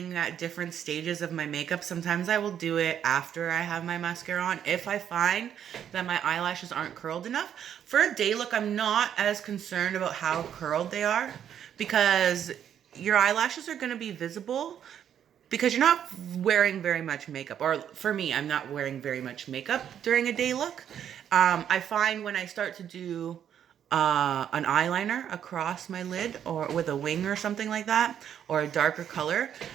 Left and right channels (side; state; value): left; quieter; 9.3 dB